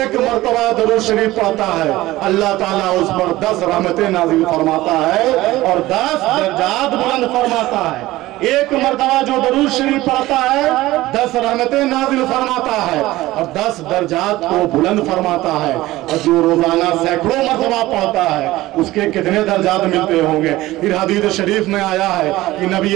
مرتبہ درود شریف پڑھتا ہے اللہ تعالیٰ اس پر 10 رحمتیں نازل فرماتا ہے اور 10 درجات بلند فرماتا ہے. ایک مرتبہ جو درود شریف پڑھتا ہے 10 رحمتیں نازل فرماتا ہے اور 10 درجات کو بلند فرماتا ہے. اور جو روزانہ سینکڑوں مرتبہ پڑھتا ہے اس کے کتنے درجات ملتے ہوں گے؟ پھر حدیث شریف میں آیا ہے کہ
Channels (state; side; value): quieter; left; 17.4 dB